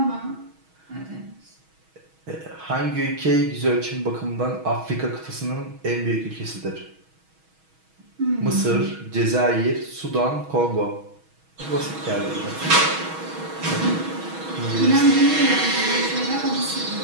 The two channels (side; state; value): left; late; 6.3 ms